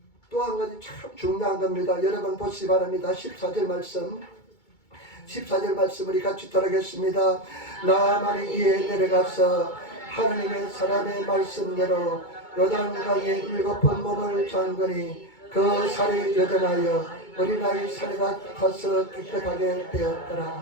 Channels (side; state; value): right; late; 2.2 ms